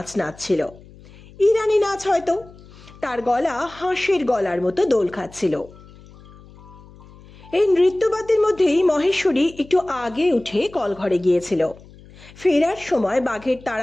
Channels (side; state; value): left; noise; hum, 22 dB below the sound